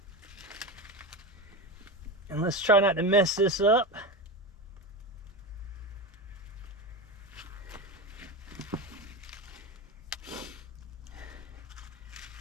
And let's try not to mess this up.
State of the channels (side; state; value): both; normal; correlation 0.21